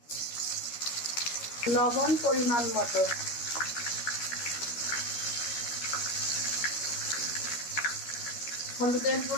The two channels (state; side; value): late; right; 13 ms